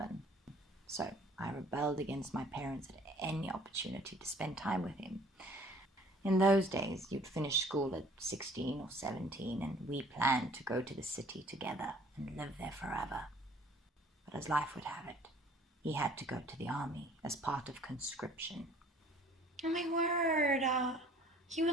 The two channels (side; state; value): both; normal; correlation 0.54